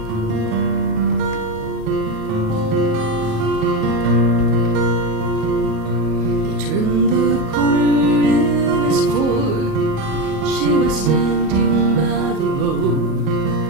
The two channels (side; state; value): left; late; 37 ms